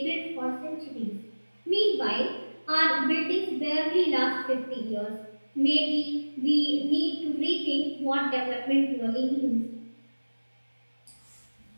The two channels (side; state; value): both; inverted; correlation -1.00